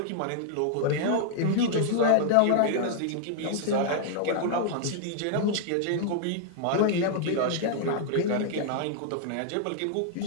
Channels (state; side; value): different; both; correlation -0.01